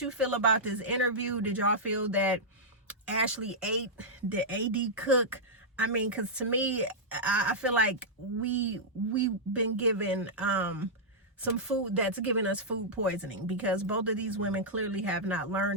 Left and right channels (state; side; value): normal; both; correlation -0.09